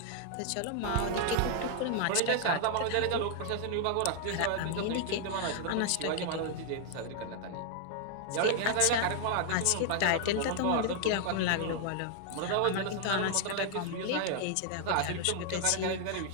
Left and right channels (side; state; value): both; different; correlation 0.00